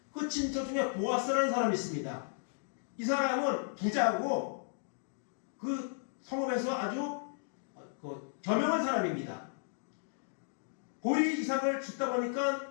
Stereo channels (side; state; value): right; silent; digital silence